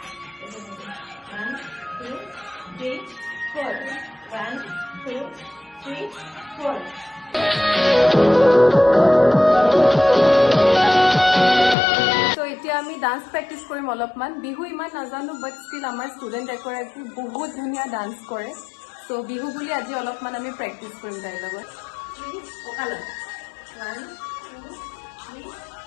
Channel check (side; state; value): right; drops out; at 11.8 s